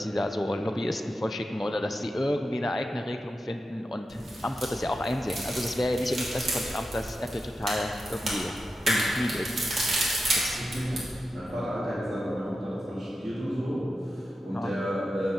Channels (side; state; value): both; normal; correlation 0.90